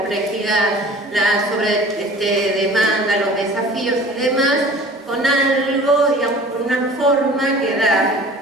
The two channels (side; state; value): both; normal; correlation 0.45